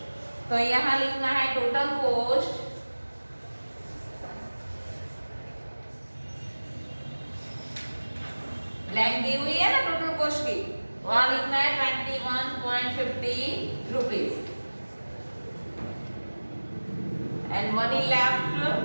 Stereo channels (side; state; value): both; inverted; correlation -1.00